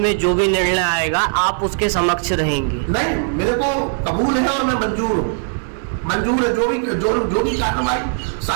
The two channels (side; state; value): left; silent; 67 dB below the other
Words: जो भी निर्णय आएगा आप उसके समक्ष रहेंगे? नहीं, मेरे को कबूल है और मैं मंजूर है। जो भी कार्रवाई